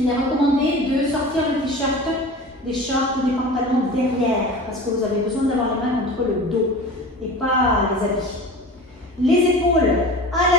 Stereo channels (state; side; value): normal; both; correlation 0.36